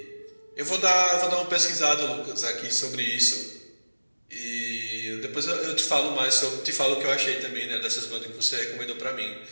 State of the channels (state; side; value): inverted; both; correlation -1.00